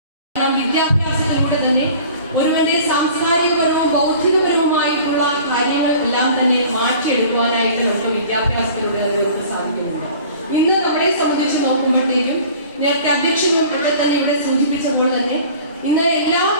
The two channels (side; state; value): both; inverted; correlation -0.45